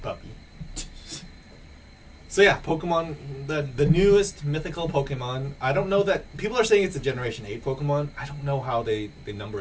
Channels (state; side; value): identical; both; correlation 1.00